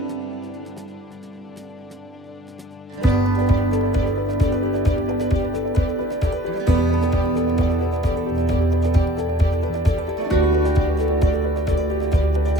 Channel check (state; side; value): normal; both; correlation 0.51